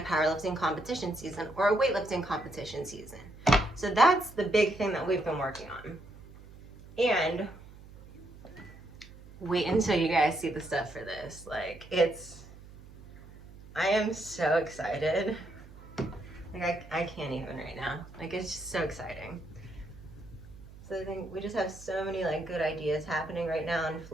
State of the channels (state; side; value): noise; right; hum, 19 dB below the sound